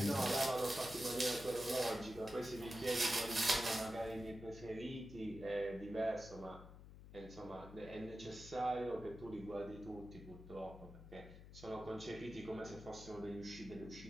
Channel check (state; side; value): noise; left; hum, 15 dB below the sound